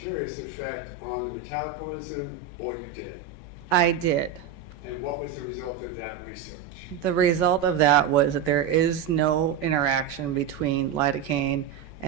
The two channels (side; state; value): left; quieter; 7.6 dB